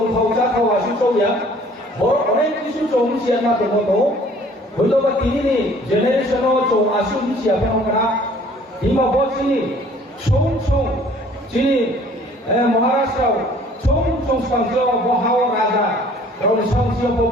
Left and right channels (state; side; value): normal; both; correlation 0.54